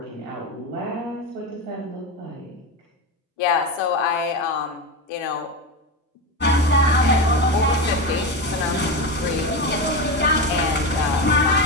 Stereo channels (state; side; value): normal; both; correlation 0.18